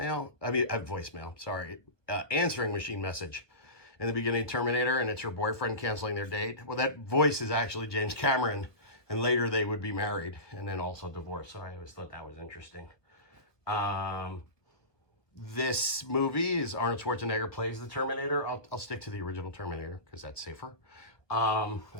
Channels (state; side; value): late; right; 1.4 ms